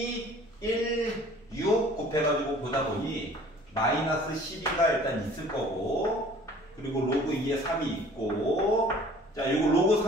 1, 6 곱해가지고 보다 보니 마이너스 12가 일단 있을 거고, 그리고 로그 2에 3이 있고, 자, 요거 로그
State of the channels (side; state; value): both; normal; correlation 0.50